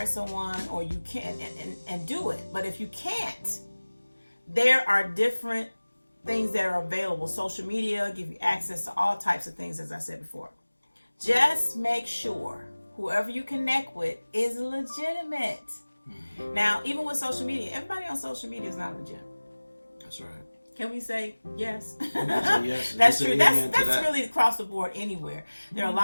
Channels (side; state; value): both; inverted; correlation -1.00